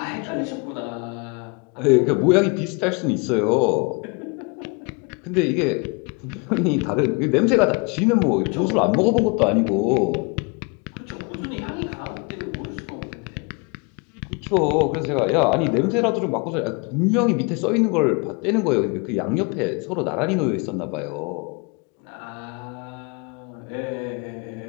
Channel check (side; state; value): right; quieter; 31.4 dB